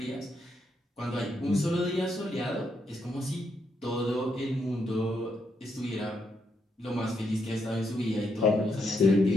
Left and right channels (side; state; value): both; normal; correlation 0.79